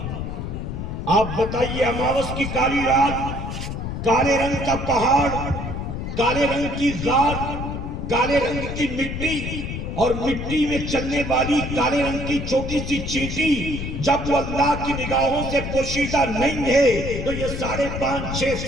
آپ بتائیے، اماوس کی کالی رات، کالے رنگ کا پہاڑ، کالے رنگ کی غار، کالے رنگ کی مٹی، اور مٹی میں چلنے والی کالے رنگ کی چھوٹی سی چیٹی، جب وہ اللہ کی نگاہوں سے پوشیدہ نہیں ہے تو یہ 5.5-6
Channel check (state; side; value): noise; left; rumble, 5 dB below the sound